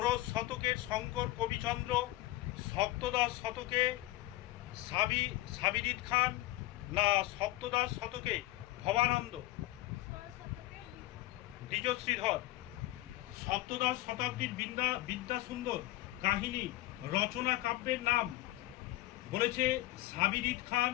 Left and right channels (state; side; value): quieter; right; 17.2 dB